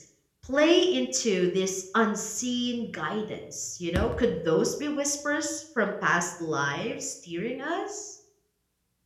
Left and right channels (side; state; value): both; identical; correlation 1.00